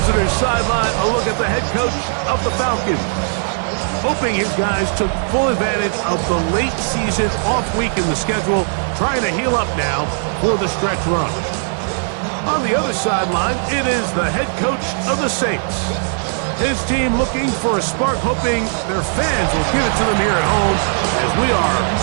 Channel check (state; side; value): silent; left; 67 dB below the other